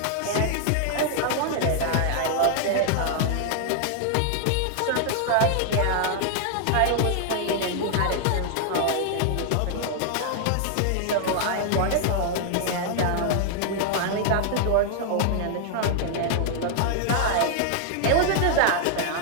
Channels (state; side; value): different; both; correlation 0.00